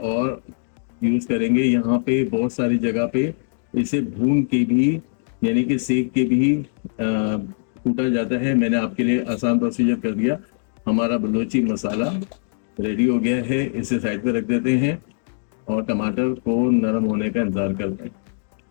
यूज करेंगे। यहाँ पे बहुत सारी जगह पे इसे भून के भी यानी कि सेक के भी कूटा जाता है। मैंने आपके लिए आसान प्रोसीजर कर दिया। हमारा बलूची मसाला रेडी हो गया है। इसे साइड पे रख देते हैं और टमाटर को नरम होने का इंतजार करते हैं।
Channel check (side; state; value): right; silent; digital silence